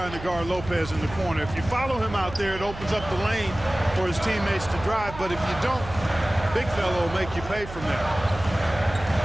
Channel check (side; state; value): right; noise; hum, 12 dB below the sound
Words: to guard Lopez in the corner. If you follow him out there, it opens up the lane for his teammates to drive. But if you don't, big fella will make you pay from there.